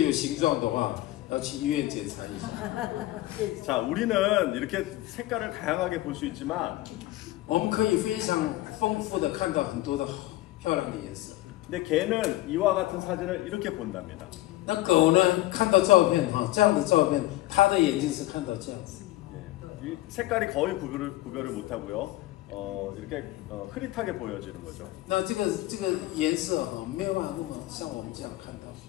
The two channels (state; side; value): quieter; right; 17.0 dB